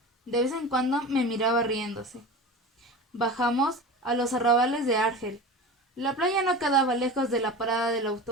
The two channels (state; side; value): normal; both; correlation 0.31